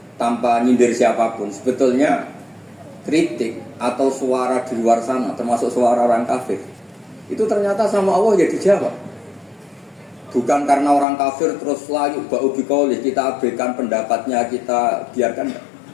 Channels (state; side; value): drops out; right; at 11.1 s